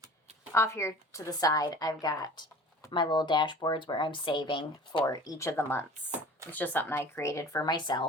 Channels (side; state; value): both; normal; correlation 0.43